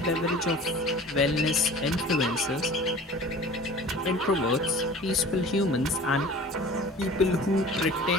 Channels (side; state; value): both; normal; correlation 0.42